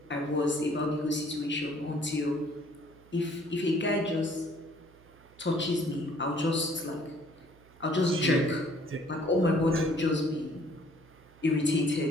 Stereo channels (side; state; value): right; noise; hum, 26 dB below the sound